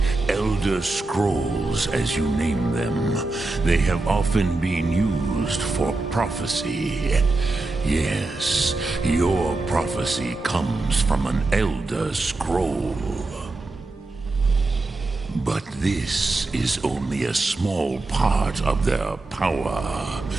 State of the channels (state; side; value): quieter; left; 3.2 dB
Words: Elder Scrolls as you name them, they have often been used for prophecy. Yes, your prophecy comes from an Elder Scroll. But this is only a small part of their power.